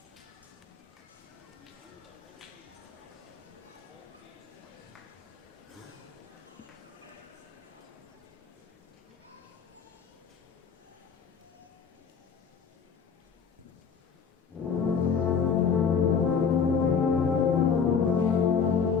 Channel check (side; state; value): right; quieter; 6.2 dB